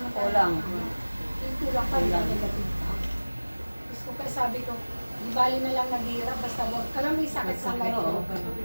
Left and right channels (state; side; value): inverted; both; correlation -1.00